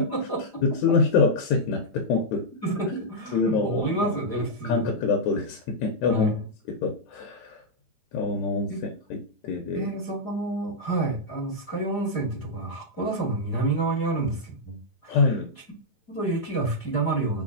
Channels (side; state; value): right; late; 9.0 ms